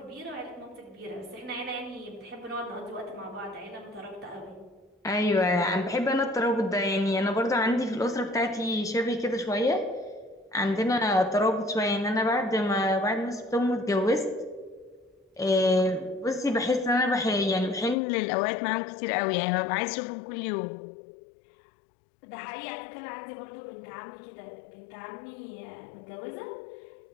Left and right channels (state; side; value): drops out; right; at 17.9 s